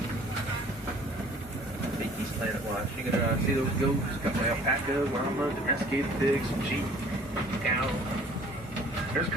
Rafiki's Planet Watch. You can see those goats, got my alpaca, llama, domesticated pigs, some sheep, cow. There's a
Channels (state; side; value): normal; both; correlation 0.52